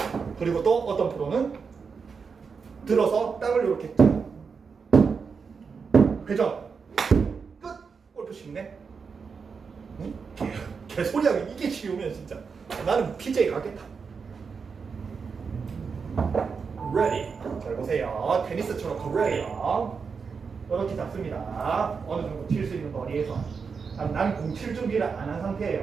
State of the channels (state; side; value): quieter; left; 5.5 dB